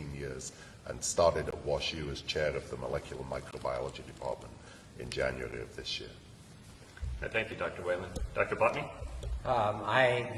years and started at WashU as chair of the Molecular Microbiology Department in January of this year. Thank you, Dr. Whelan. Dr. Botney? I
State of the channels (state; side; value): identical; both; correlation 1.00